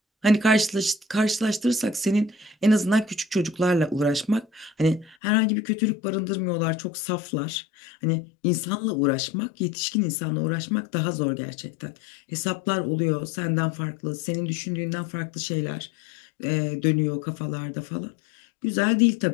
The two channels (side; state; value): right; drops out; at 5.2 s